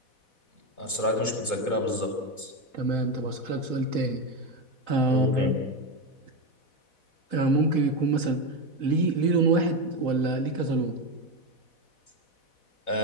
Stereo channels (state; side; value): late; right; 4.1 ms